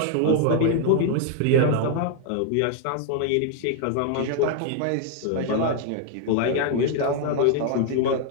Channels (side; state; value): both; different; correlation 0.00